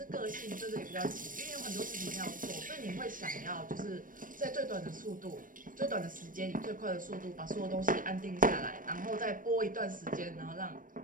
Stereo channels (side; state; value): left; late; 0.40 ms